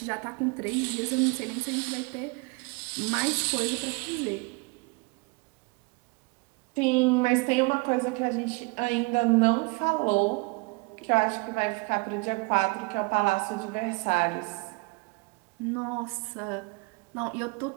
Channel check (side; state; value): left; quieter; 28.6 dB